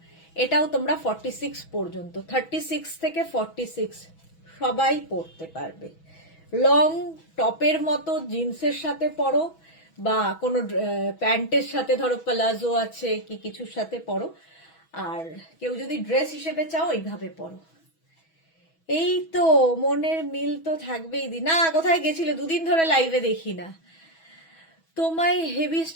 এটাও তোমরা 46 পর্যন্ত, 36 থেকে 46 সবাই পরতে পারবে। লং টপের মতো জিন্সের সাথে পরো বা কোনো প্যান্টের সাথে, ধরো প্লাজো আছে কি কিছুর সাথে পরো, আর কেউ যদি ড্রেস হিসেবে চাও এইভাবে পরো। এই তো মনের মিল তো থাকবেই। না কোথায় গেছিলে, দুদিন ধরে লাইভে দেখি না তোমায়, হেভি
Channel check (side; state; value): right; late; 6.1 ms